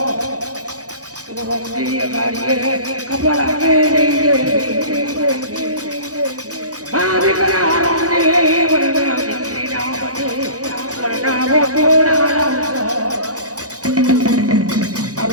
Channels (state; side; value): late; left; 0.67 ms